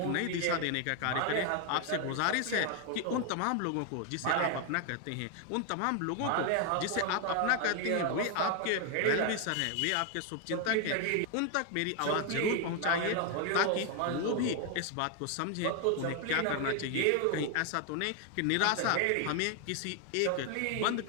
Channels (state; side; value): different; both; correlation 0.01